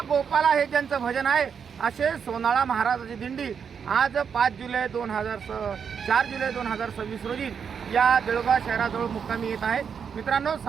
गोपाला हे ज्यांचं भजन आहे असे सोनाळा महाराजाची दिंडी आज 4 जुलै 2026 रोजी या देऊळगाव शहराजवळ मुक्कामी येत आहे. मित्रांनो,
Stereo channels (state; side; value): quieter; left; 6.9 dB